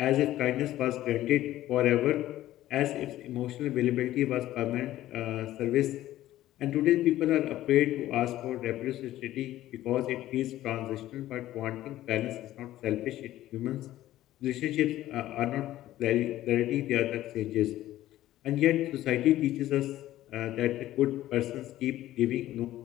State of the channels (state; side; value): quieter; right; 14.4 dB